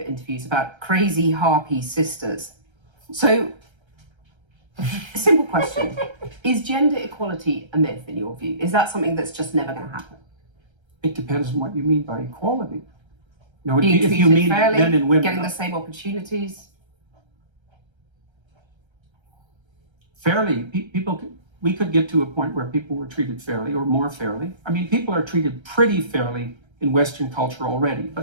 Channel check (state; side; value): late; left; 1.3 ms